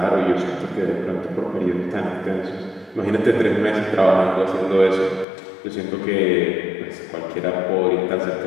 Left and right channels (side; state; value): right; drops out; at 5.2 s